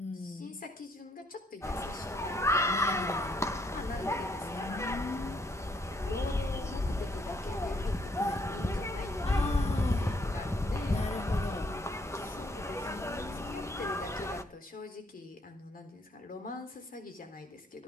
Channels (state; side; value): normal; both; correlation 0.69